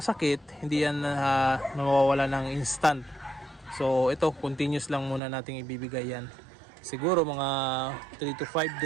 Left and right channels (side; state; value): left; drops out; at 5.2 s